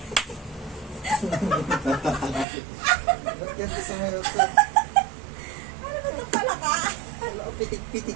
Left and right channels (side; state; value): left; drops out; at 2.5 s